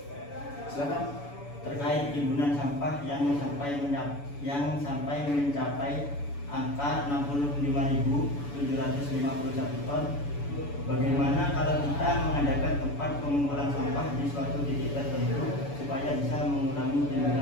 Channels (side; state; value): right; late; 7.0 ms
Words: Silakan. Terkait timbunan sampah yang sampai mencapai angka 65.751 ton, bagaimana kalau kita mengadakan tempat pengumpulan sampah di suatu titik tertentu supaya bisa mengurangi